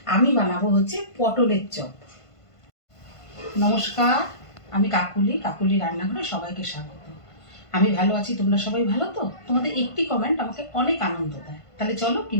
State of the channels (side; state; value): right; late; 1.5 ms